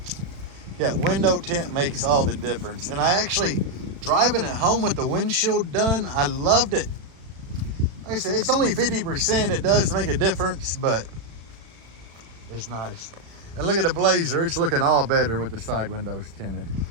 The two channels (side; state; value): left; late; 36 ms